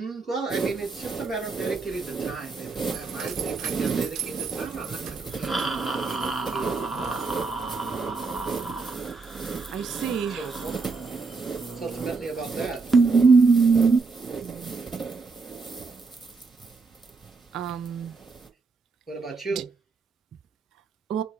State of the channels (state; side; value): quieter; left; 4.3 dB